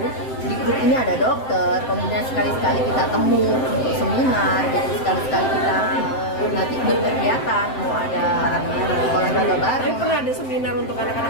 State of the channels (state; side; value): late; right; 7.7 ms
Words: di grup ini ada dokter. Kemudian sekali-sekali kita temu untuk seminar, jadi sekali-sekali kita nanti berkegiatan, mau ada olahraga bareng. Pernah ada seminar untuk